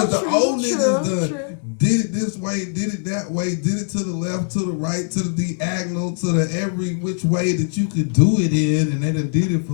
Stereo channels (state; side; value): silent; right; digital silence